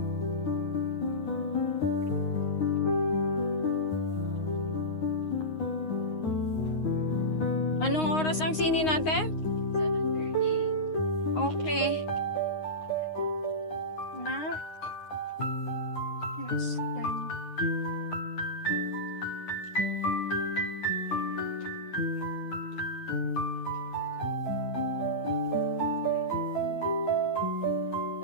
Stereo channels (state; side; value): late; right; 9.6 ms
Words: Anong oras ang sini natin? 7:30. Okay. Na? Yes, then.